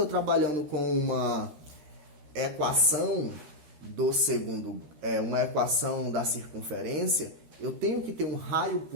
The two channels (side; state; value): left; late; 13 ms